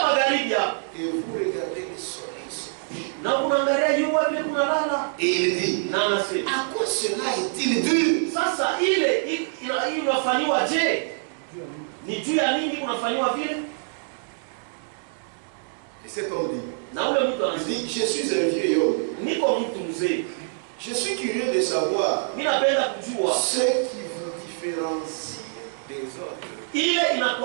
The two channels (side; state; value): left; silent; digital silence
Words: magharibi hapa. Et vous regardez le soleil se coucher. Na unaangalia jua vile kunalala. Et il dit, Na anasema à quoi cela est-il dû? sasa ile inafanywa je? Ni juu ya nini kunafanywa vile? Et cet homme dit, Na ule mtu il anasema dit, je suis un vieil homme. niko mtu mzee. Je suis curieux de savoir Mimi napenda kujua ce qui vous différencie des autres. ile